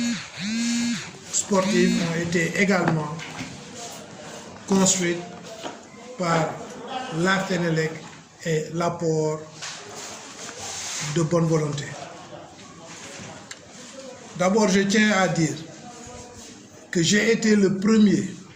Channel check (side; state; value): both; identical; correlation 1.00